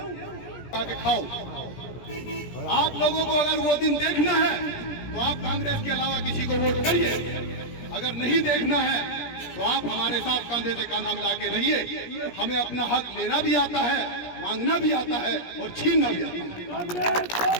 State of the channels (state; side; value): late; right; 17 ms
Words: आके खाओ। आप लोगों को अगर वो दिन देखना है तो आप कांग्रेस के अलावा किसी को वोट करिए। अगर नहीं देखना है तो आप हमारे साथ कंधे से कंधा मिला के रहिए। हमें अपना हक लेना भी आता है, मांगना भी आता है और छीनना भी आता